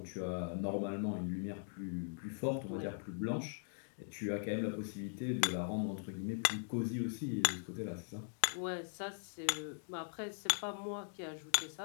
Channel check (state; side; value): silent; right; digital silence